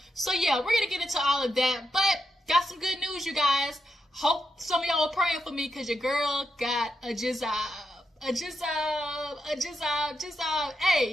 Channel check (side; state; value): both; normal; correlation 0.84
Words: So yeah, we're gonna get into all of that, but got some good news, you guys. Hope some of y'all are praying for me, because your girl got a jizzab. Hey,